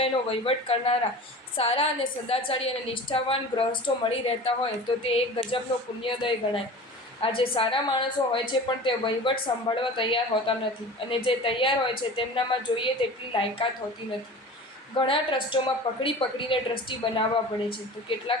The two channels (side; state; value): both; normal; correlation 0.37